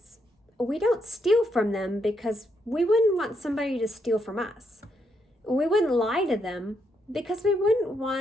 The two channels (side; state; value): both; normal; correlation 0.78